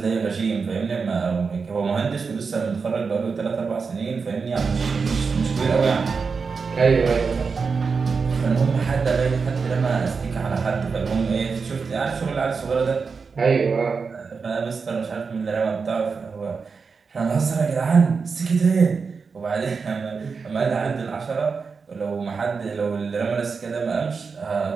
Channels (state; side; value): quieter; left; 5.1 dB